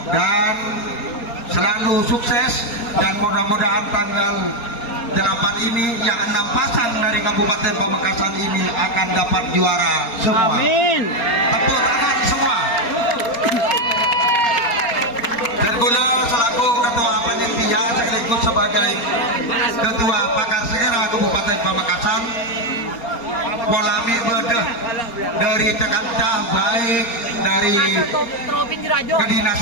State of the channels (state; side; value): late; right; 4.3 ms